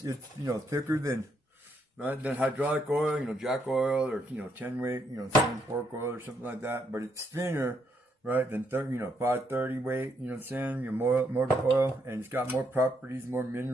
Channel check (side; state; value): both; normal; correlation 0.75